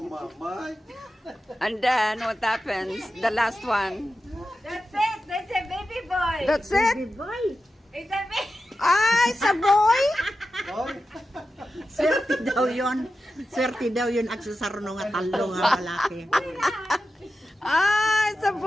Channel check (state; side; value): normal; both; correlation 0.92